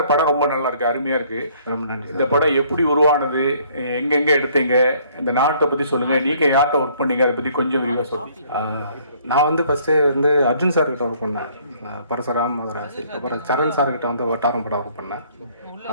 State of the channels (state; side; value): inverted; both; correlation -0.61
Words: படம் ரொம்ப நல்லா இருக்கு, அருமையா இருக்கு. ரொம்ப நன்றி. இந்த படம் எப்படி உருவானது, எங்கெங்க எடுத்தீங்க, இந்த நாட்டை பத்தி சொல்லுங்க, நீங்க யார்கிட்ட ஒர்க் பண்ணீங்க, அதை பத்தி கொஞ்சம் விரிவாக சொல்லுங்க. நான் வந்து ஃபர்ஸ்ட் வந்து அர்ஜுன் சார் கிட்ட ஒர்க் பண்ணேன், பரசுராம் மதராசி. அப்புறம் சரண் சார் கிட்ட வந்து வட்டாரம் படம் ஒர்க் பண்ணேன்.